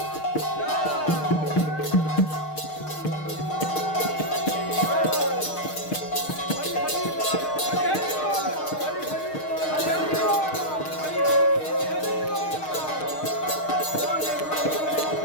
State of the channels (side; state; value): right; late; 6.5 ms